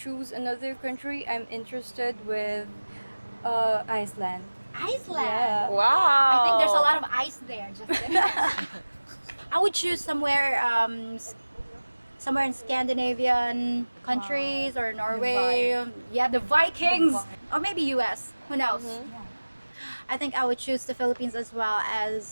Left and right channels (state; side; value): inverted; both; correlation -1.00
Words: another country, I'm interested with Iceland. Iceland. Yeah. Wow. I think there's a lot of ice there. Just kidding. I would choose somewhere, somewhere in Scandinavian countries or Norway. Yeah, the Vikings, or maybe U.S. Who knows? I think I would choose the Philippines as well